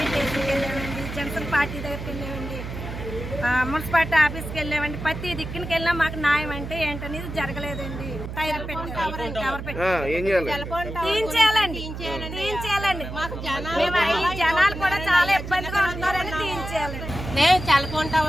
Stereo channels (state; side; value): noise; right; hum, 8 dB below the sound